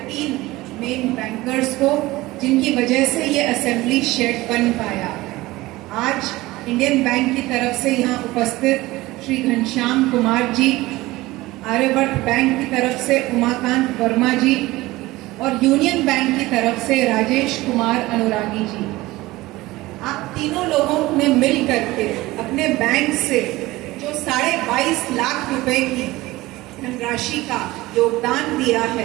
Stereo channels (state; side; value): quieter; left; 19.1 dB